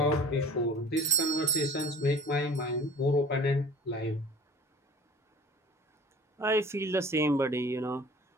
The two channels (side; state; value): both; normal; correlation 0.44